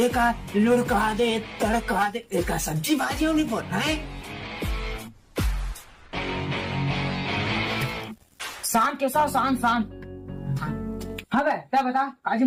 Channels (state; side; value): identical; both; correlation 1.00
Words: लुढ़का दे तड़का दे एक सब्जी भाजी नहीं बोलना है. शान के साथ शान शान. हाँ बे क्या बता आज